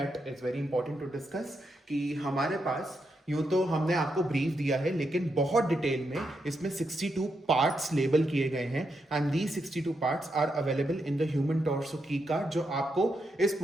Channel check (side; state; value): both; normal; correlation 0.83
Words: is very important to discuss कि हमारे पास यूं तो हमने आपको ब्रीफ दिया है लेकिन बहुत डिटेल में इसमें 62 पार्ट्स लेबल किए गए हैं and these 62 parts are available in the human torso की कार्ड जो आपको इस